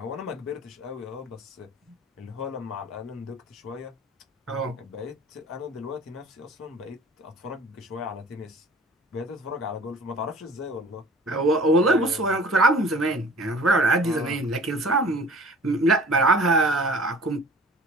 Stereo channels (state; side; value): normal; both; correlation 0.46